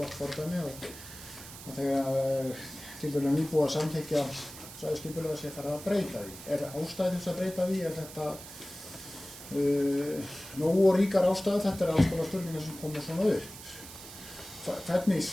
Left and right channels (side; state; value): right; noise; hiss, 14 dB below the sound